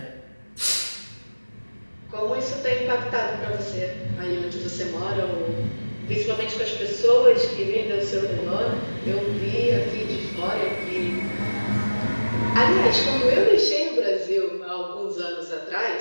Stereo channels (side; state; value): both; inverted; correlation -1.00